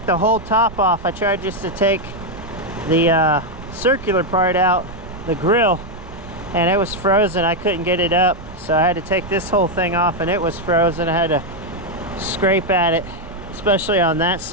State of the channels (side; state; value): right; noise; rumble, 15 dB below the sound